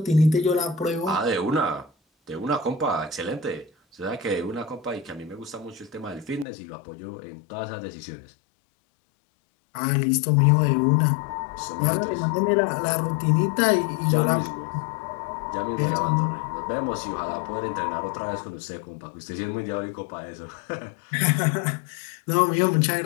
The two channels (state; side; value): drops out; right; at 6.5 s